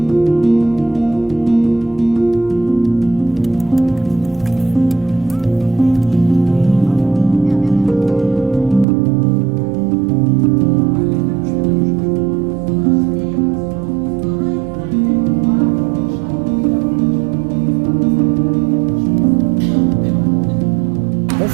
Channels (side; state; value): left; drops out; at 8.8 s